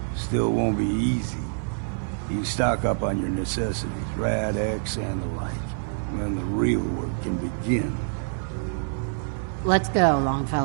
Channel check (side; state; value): left; silent; 61 dB below the other